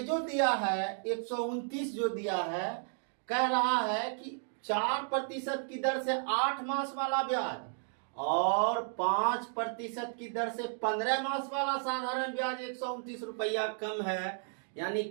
दिया है 129 जो दिया है, कह रहा है कि 4% की दर से 8 मास वाला ब्याज और 5% की दर से 15 मास वाला साधारण ब्याज 129 रुपया कम है, यानी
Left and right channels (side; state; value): left; silent; digital silence